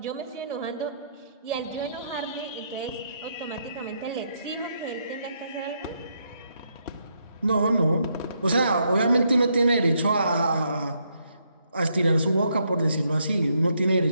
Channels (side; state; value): both; inverted; correlation -0.76